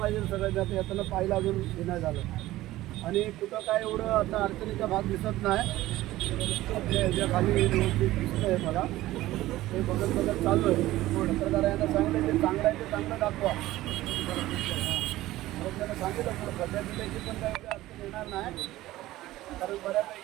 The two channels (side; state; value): left; quieter; 16.3 dB